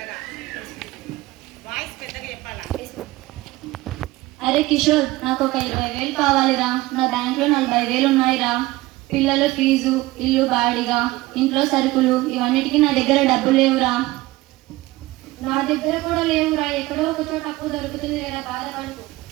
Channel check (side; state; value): left; quieter; 19.0 dB